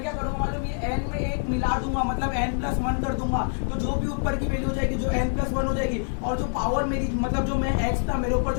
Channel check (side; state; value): right; silent; digital silence